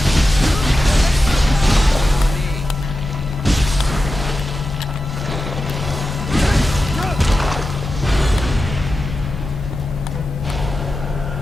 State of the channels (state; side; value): normal; both; correlation 0.92